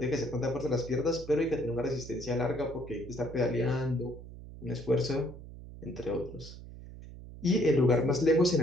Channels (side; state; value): right; noise; hum, 14 dB below the sound